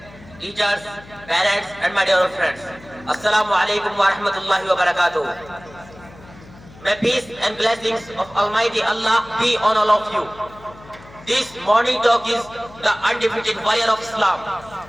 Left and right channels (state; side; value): noise; left; hum, 21 dB below the sound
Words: teachers, parents, and my dear friends. Assalamu alaikum wa rahmatullahi wa barakatuh. May peace and blessings of Almighty Allah be on all of you. This morning talk is the undefeated warrior of Islam.